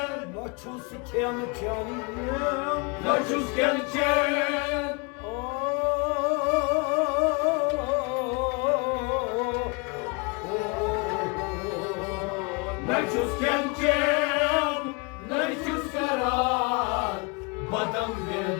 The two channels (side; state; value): right; quieter; 31.1 dB